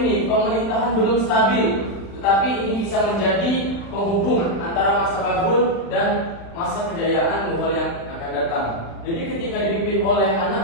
ini pemerintahan belum stabil, tetapi ini bisa menjadi penghubung antara masa Babur dan masa kejayaan Mughal yang akan datang. Jadi ketika dipimpin oleh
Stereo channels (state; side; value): late; right; 35 ms